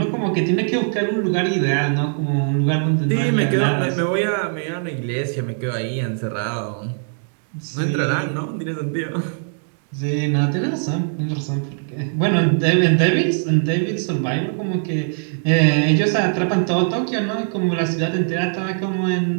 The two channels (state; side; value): silent; left; digital silence